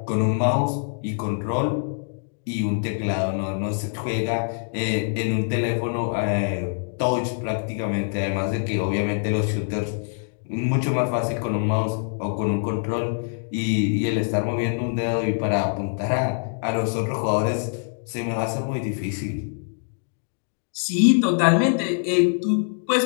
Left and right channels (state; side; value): silent; right; digital silence